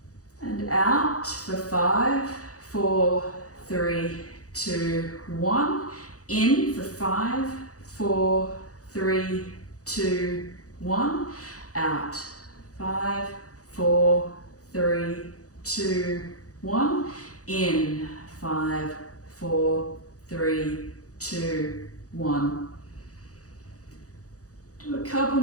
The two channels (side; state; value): right; late; 0.66 ms